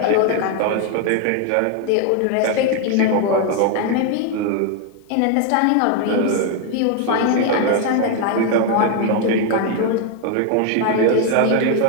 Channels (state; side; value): different; both; correlation 0.01